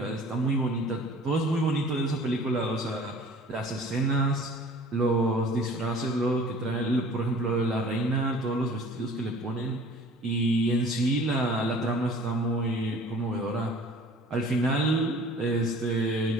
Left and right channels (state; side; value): normal; both; correlation 0.48